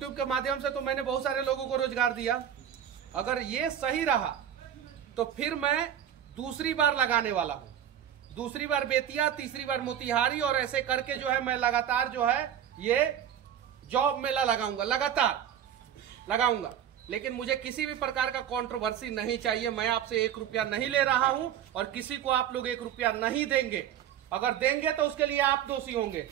के माध्यम से तो मैंने बहुत सारे लोगों को रोजगार दिया, अगर ये सही रहा तो फिर मैं दूसरी बार लगाने वाला हूं। दूसरी बार बेतिया, तीसरी बार मोतिहारी, और ऐसे करके जो है मैं लगातार जो है ये जॉब मेला लगाऊंगा, लगातार लगाऊंगा। लेकिन मुझे किसी भी प्रकार का कंट्रोवर्सी नहीं चाहिए। मैं आपसे 1 रुपया नहीं ले रहा हूं और किसी को आप लोग 1 रुपया नहीं देंगे। अगर देंगे तो उसके लिए आप दोषी होंगे।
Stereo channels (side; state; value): left; quieter; 9.9 dB